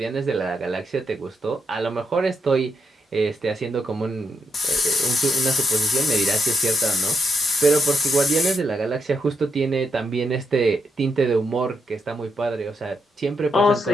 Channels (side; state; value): both; normal; correlation 0.81